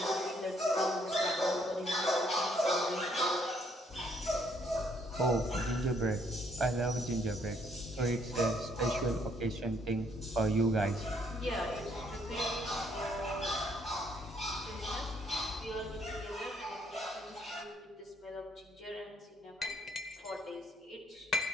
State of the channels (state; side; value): normal; both; correlation 0.68